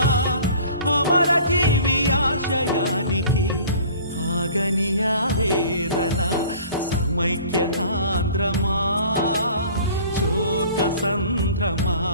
అమరజీవి ఆశయానికి ఆగని ఆవేదన. సమైక్య ఆంధ్రమా శోక సంద్రమా,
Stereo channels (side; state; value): both; inverted; correlation -0.47